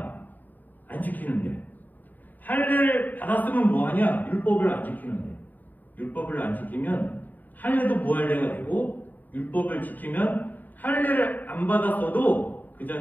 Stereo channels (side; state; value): right; late; 0.085 ms